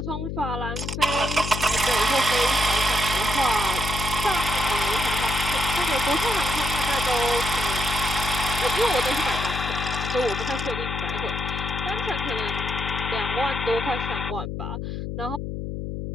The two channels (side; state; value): left; noise; hum, 5 dB below the sound